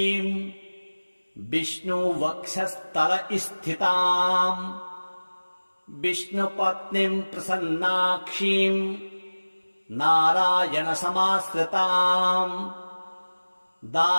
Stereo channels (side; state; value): both; inverted; correlation -1.00